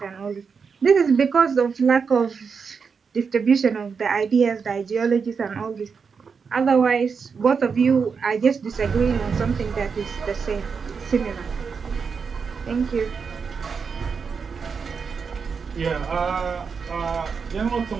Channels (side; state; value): left; quieter; 5.7 dB